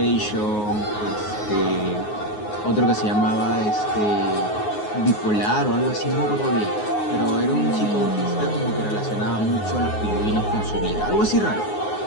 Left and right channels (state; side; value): late; right; 9.5 ms